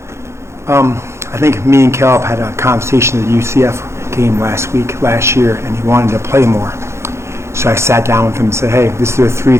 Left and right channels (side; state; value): left; late; 0.13 ms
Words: I think me and Caleb had a conversation at the UCF game last year, and he wanted to play more. So I sat down with him and said, hey, this are the 3